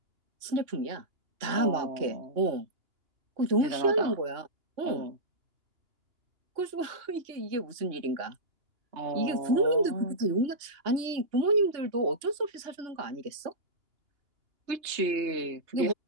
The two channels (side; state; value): left; late; 2.9 ms